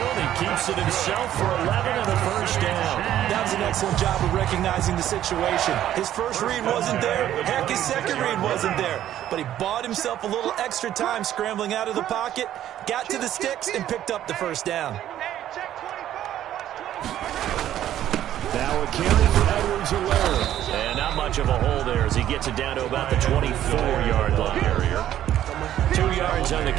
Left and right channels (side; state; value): left; quieter; 11.9 dB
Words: He keeps it himself for 11 and a first down. That was an excellent job of recognizing the situation. His first read wasn't there. Heck, his second read wasn't there. But he bought himself a little extra time scrambling out of the pocket, got to the sticks, and picked up the first down. Now a carry for Edwards-Helaire. And not much of a hole there as he gets it down to about the 24-yard line. 2 yards on the